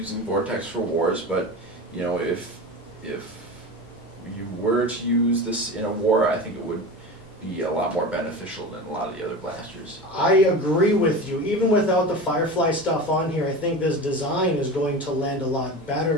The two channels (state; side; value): normal; both; correlation 0.29